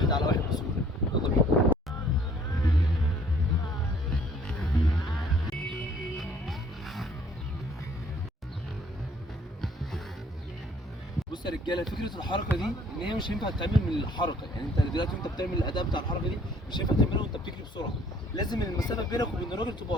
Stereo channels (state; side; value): normal; both; correlation 0.59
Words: على واحد بسهوله. يلا بينا. بص يا رجاله، فكره الحركه دي ان هي مش هينفع تتعمل من الحركه، يعني انت دلوقتي وانت بتعمل الاداء بتاع الحركه دي مش هينفع تعملها وانت بتجري بسرعه. لازم المسافه بينك وبين الراجل تبقى